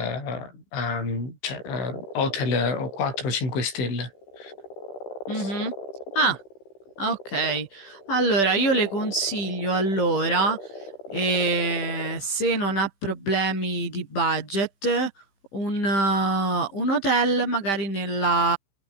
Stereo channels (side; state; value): right; late; 15 ms